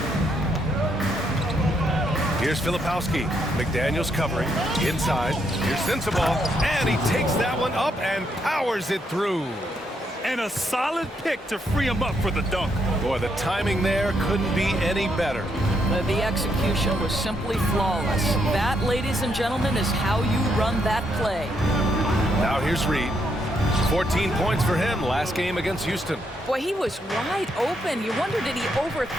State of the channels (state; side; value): normal; both; correlation 0.76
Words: Here's Filipowski. McDaniels covering. Inside. Here's Sensabaugh. And he takes that one up and powers it through. And a solid pick to free him up for the dunk. Boy, the timing there couldn't be any better. The execution was simply flawless. That, ladies and gentlemen, is how you run that play. Now here's Reed. 14 points for him last game against Houston. Boy, he was wide open. You wonder, did he